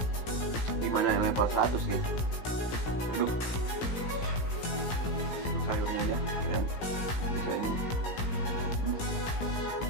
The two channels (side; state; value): right; late; 17 ms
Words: Gimana yang level 100 nih? Aduh, sayurnya aja ya. Bisa ini.